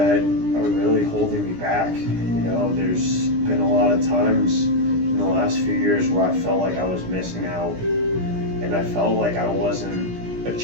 are really holding me back. There's been a lot of times in the last few years where I felt like I was missing out, and I felt like I wasn't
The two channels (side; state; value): left; late; 17 ms